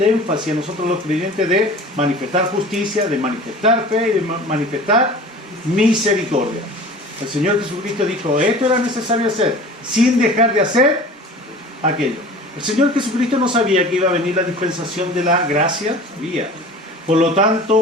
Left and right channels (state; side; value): normal; both; correlation 0.41